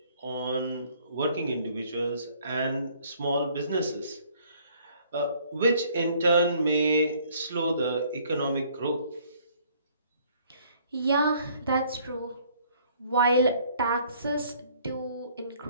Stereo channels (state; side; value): inverted; both; correlation -0.60